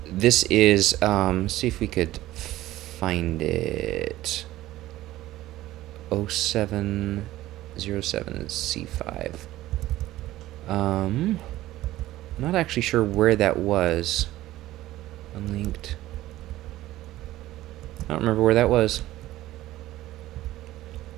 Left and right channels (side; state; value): left; quieter; 15.6 dB